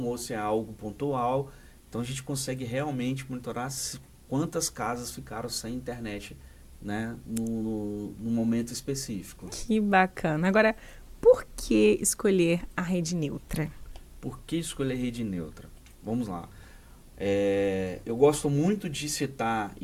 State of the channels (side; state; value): both; identical; correlation 1.00